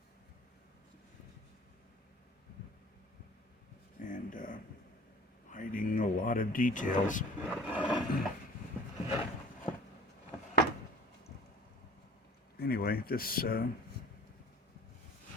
And hiding a lot of details. Anyway, this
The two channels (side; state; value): both; normal; correlation 0.46